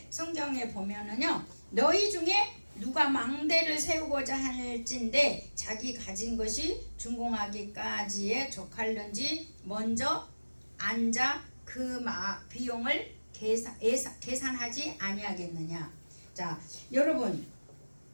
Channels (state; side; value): inverted; both; correlation -1.00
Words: 성경에 보면은요, 너희 중에 누가 망대를 세우고자 할진대 자기 가진 것이 준공하기까지에 족할는지 먼저 앉아 그 비용을 계산하지 아니하겠느냐. 자, 여러분,